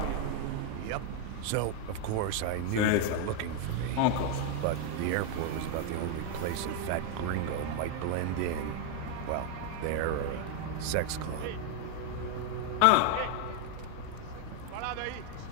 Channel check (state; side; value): different; both; correlation 0.00